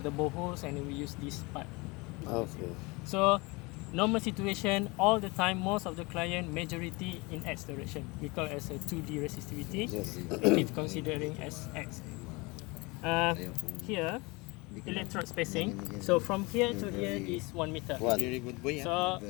the boreholes and we use this part. Okay. So normal situation, all the time, most of the client, majority in X direction. We call it as a 2D resistivity. Yes. It is considering as X. Here, electrode spacing. So from here to here is 1 meter. Very good boy. So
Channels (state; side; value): quieter; right; 25.8 dB